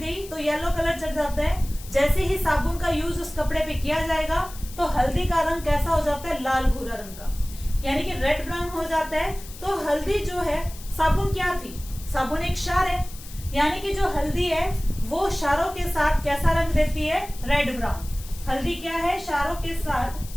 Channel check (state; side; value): noise; left; hiss, 17 dB below the sound